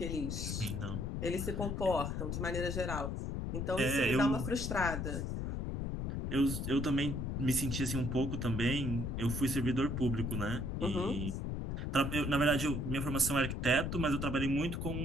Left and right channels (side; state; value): left; noise; rumble, 2 dB below the sound